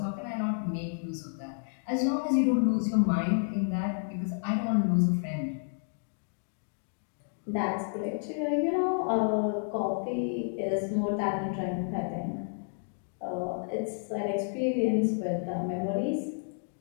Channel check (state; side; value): silent; right; digital silence